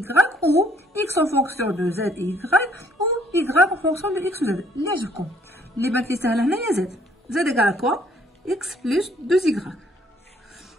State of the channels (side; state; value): both; normal; correlation 0.64